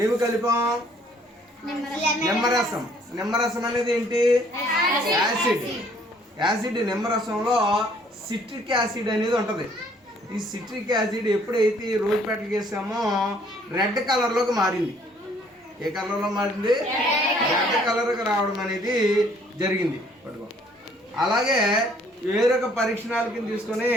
ఏమి కలిపాం? నిమ్మరసం. నిమ్మరసం అనేది ఏంటి? యాసిడ్. యాసిడ్ నిమ్మరసంలో సిట్రిక్ యాసిడ్ అనేది ఉంటది. ఈ సిట్రిక్ యాసిడ్ ఎప్పుడైతే రోజ్ పెటల్ చేసామో రెడ్ కలర్ లోకి మారింది. ఏ కలర్ లో మారింది? రెడ్ కలర్ కి రావడం అనేది జరిగింది. పట్టుకో. అలాగే వేరొక పరీక్షణాళికని తీసుకొని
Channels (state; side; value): normal; both; correlation 0.61